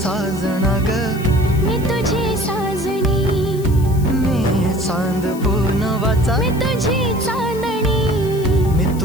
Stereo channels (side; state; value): left; noise; hiss, 18 dB below the sound